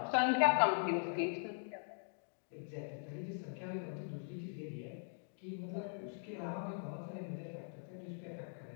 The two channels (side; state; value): right; silent; digital silence